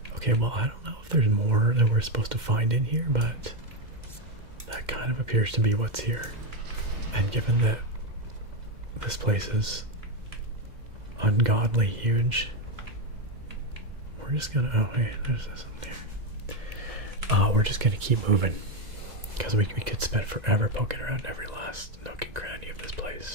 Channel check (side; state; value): left; late; 2.1 ms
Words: Okay, well, I don't know if there's more that we're supposed to find in here, but that kind of appears to be what's here. And given that this place is ungodly huge, we're just gonna, oh hey, there's something there. We're just gonna keep moving, because we could spend forever poking around every last nook and cranny of this